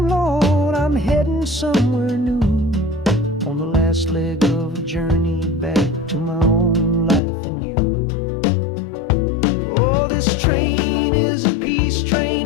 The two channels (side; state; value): right; drops out; at 7.2 s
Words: Lord, I'm heading somewhere new, on the last leg of a journey back to my own life and you. Oh, this train is a peace